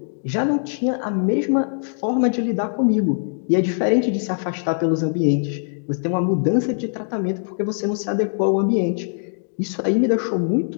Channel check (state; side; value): silent; right; digital silence